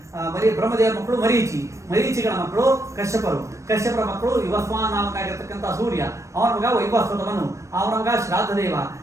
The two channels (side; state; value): left; late; 0.15 ms